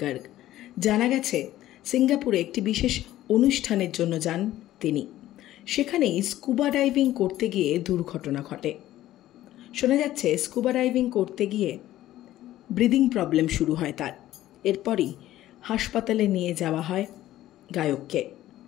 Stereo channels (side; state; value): right; quieter; 14.2 dB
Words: জানা গেছে সিঙ্গাপুরে একটি বিশেষ অনুষ্ঠানের জন্য যান তিনি। সেখানেই স্কুবা ডাইভিং করতে গিয়ে দুর্ঘটনা ঘটে। শোনা যাচ্ছে স্কুবা ডাইভিং করতে গিয়ে ব্রিদিং প্রবলেম শুরু হয় তার। এরপরই হাসপাতালে নিয়ে যাওয়া হয় গায়ককে।